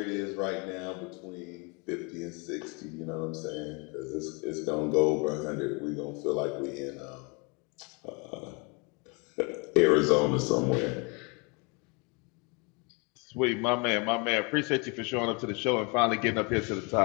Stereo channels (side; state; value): right; quieter; 31.3 dB